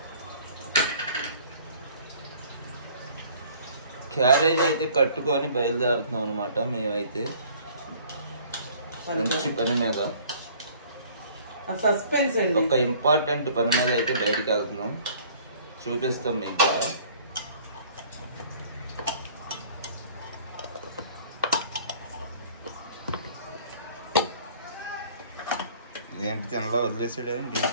క్యారేజ్ అయితే కట్టుకొని బయలుదేరుతున్నాం అనమాట. మేమైతే మంచి పని మీద, సస్పెన్స్ అండి, ఒక ఇంపార్టెంట్ పని మీద అయితే బయటికి వెళ్తున్నాం. చూపిస్తాం మీకు కూడా. ఏంటి తినలా వదిలేసాడా ఏంటి?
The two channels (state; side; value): inverted; both; correlation -0.53